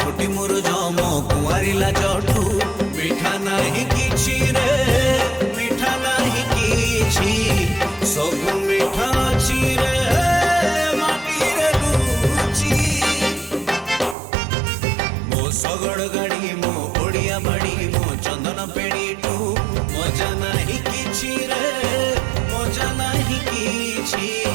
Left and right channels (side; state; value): left; drops out; at 14.2 s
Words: मोर जम कुआरी लाजठू मिठा नहीं किछि रे मिठा नहीं किछि सब मिठा अछि रे माटी रे रुचि मो सगड़ गाड़ी मो ओडिया बाड़ी मो चंदन पेड़ीठू मजा नहीं किछि रे मजा नहीं किछि